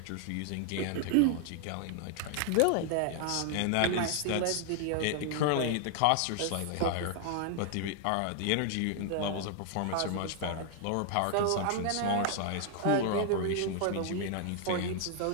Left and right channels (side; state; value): both; different; correlation 0.00